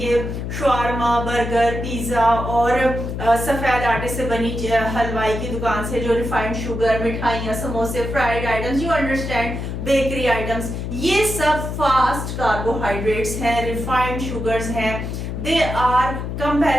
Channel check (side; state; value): left; noise; hum, 5 dB below the sound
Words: شاورما, برگر, پیزا اور سفید آٹے سے بنی حلوائی کی دکان سے جو ریفائنڈ شوگر, مٹھائیاں, سموسے, fried items, you understand, bakery items, یہ سب فاسٹ کاربوہائیڈریٹس ہیں, ریفائنڈ شوگرز ہیں. They are